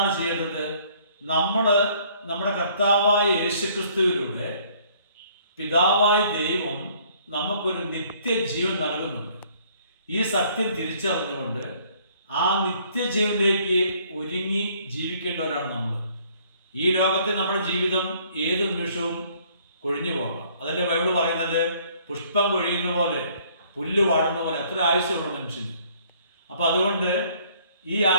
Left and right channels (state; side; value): inverted; both; correlation -0.61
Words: ചെയ്യേണ്ടത്? നമ്മൾ നമ്മുടെ കർത്താവായ യേശുക്രിസ്തുവിലൂടെ പിതാവായ ദൈവം നമുക്കൊരു നിത്യജീവൻ നൽകുന്നുണ്ട്. ഈ സത്യം തിരിച്ചറിഞ്ഞുകൊണ്ട് ആ നിത്യജീവനിലേക്ക് ഒരുങ്ങി ജീവിക്കേണ്ടവരാണ് നമ്മൾ. ഈ ലോകത്തെ നമ്മുടെ ജീവിതം ഏത് നിമിഷവും കൊഴിഞ്ഞു പോകാം. അതല്ലേ ബൈബിൾ പറയുന്നത്, പുഷ്പം കൊഴിയുന്ന പോലെ, പുല്ല് വാടുന്ന പോലെ അത്ര ആയുസ്സുള്ള മനുഷ്യന്. അപ്പം അതുകൊണ്ട് ഈ